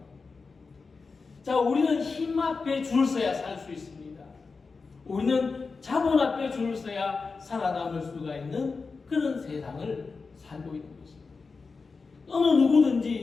자, 우리는 힘 앞에 줄 서야 살 수 있습니다. 우리는 자본 앞에 줄 서야 살아남을 수가 있는 그런 세상을 살고 있는 것입니다. 어느 누구든지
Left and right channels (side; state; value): right; quieter; 4.5 dB